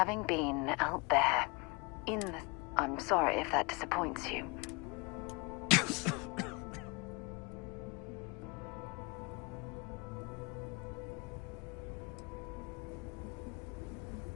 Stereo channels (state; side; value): quieter; right; 28.8 dB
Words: been out there, in the... I'm sorry if that disappoints you.